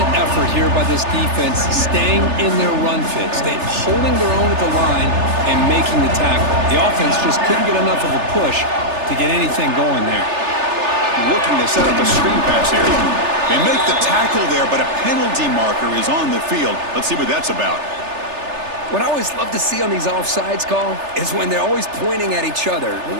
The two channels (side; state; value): left; late; 3.3 ms